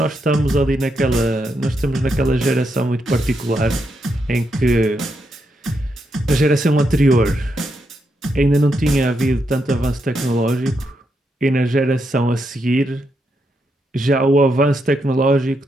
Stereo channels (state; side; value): normal; both; correlation 0.81